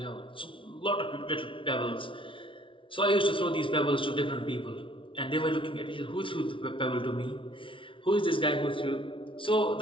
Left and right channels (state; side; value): late; right; 0.25 ms